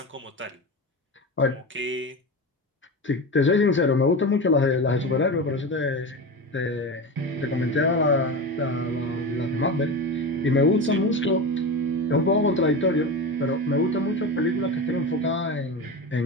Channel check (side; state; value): both; normal; correlation 0.24